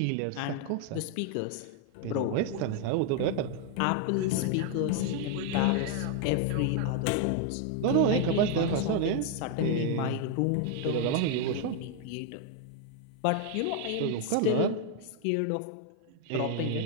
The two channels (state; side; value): different; both; correlation 0.00